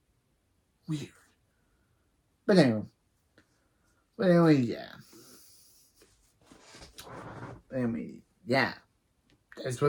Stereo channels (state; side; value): identical; both; correlation 1.00